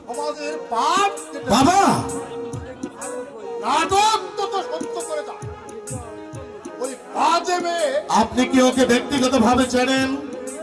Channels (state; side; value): identical; both; correlation 1.00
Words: পাপ কেটে বাবা, নাটক তো সত্য করে দাও। ওই বাজে মেয়ে আপনি কি ওকে ব্যক্তিগত ভাবে চেনেন?